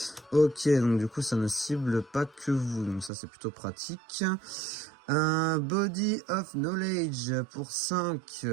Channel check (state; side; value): drops out; left; at 3.1 s